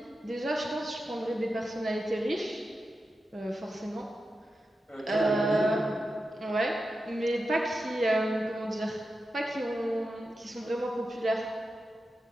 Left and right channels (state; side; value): normal; both; correlation 0.91